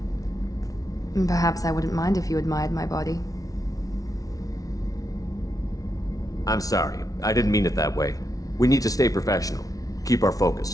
Perhaps I wouldn't mind if you admired my body. I'm sorry, I didn't mean it that way. We need to stay professional. Keep our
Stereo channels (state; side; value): late; right; 0.18 ms